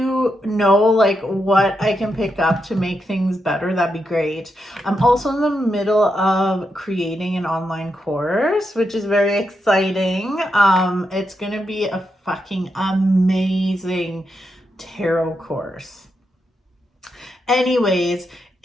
know like what I can pick up to make things better, that'd be great. I'm also in the middle of creating an online course, which is very exciting. It's gonna be a fucking amazing tarot course. Anyways,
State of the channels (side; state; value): both; normal; correlation 0.84